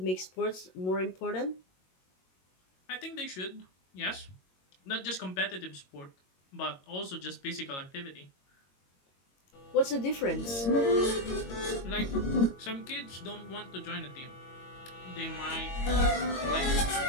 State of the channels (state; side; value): late; right; 22 ms